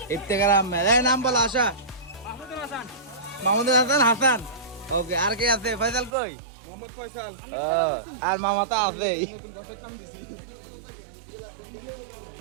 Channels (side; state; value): left; drops out; at 6.1 s